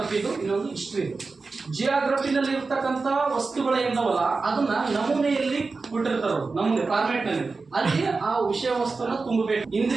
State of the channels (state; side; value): quieter; left; 4.1 dB